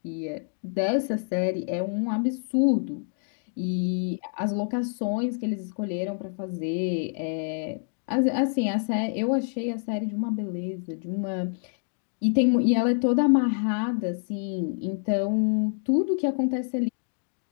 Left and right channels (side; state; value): right; silent; digital silence